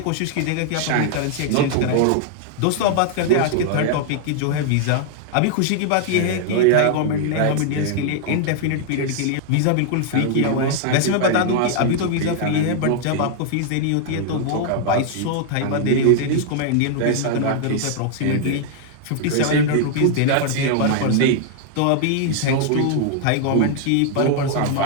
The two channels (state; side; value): different; both; correlation 0.00